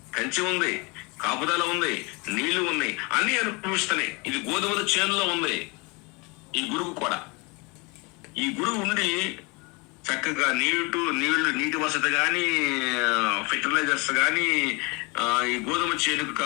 కంచి ఉంది, కాపుదల ఉంది, నీళ్లు ఉన్నాయి, అన్ని అనుభవిస్తున్నాయి. ఇది గోధుమల చేనులో ఉంది. ఈ గురుగు కూడా, ఈ గురుగు ఉండి చక్కగా నీటి వసతి కానీ, ఫెర్టిలైజర్స్ కానీ, ఈ గోధుమ చేనుకు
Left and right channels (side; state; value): right; quieter; 28.4 dB